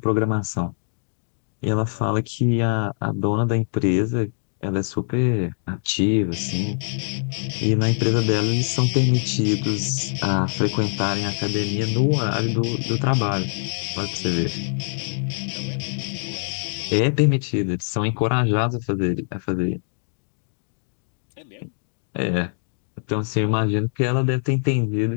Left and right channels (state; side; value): silent; right; digital silence